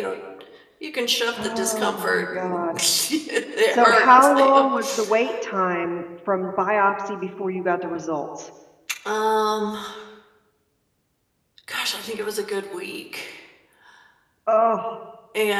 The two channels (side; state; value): both; identical; correlation 1.00